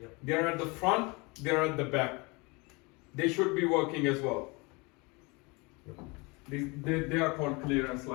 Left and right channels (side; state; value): right; quieter; 27.5 dB